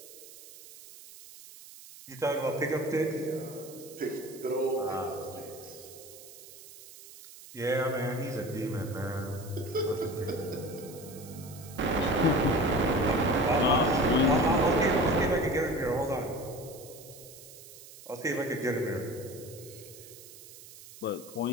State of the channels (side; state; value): right; noise; hiss, 18 dB below the sound